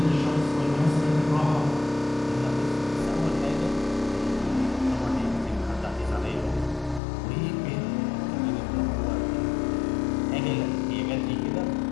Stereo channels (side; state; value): right; drops out; at 7.0 s